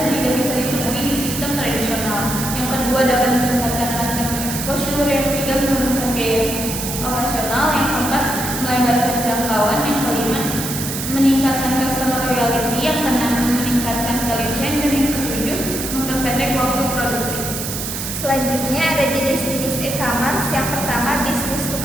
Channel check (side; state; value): right; noise; hiss, 5 dB below the sound